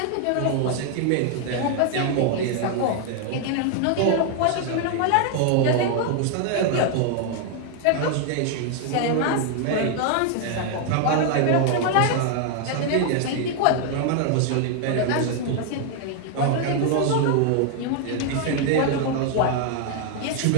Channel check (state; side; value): different; both; correlation 0.00